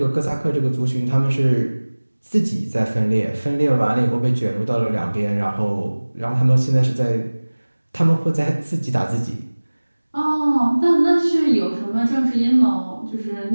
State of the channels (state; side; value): inverted; both; correlation -1.00